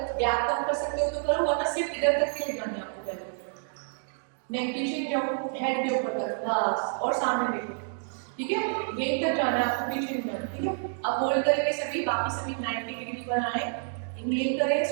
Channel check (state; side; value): silent; left; digital silence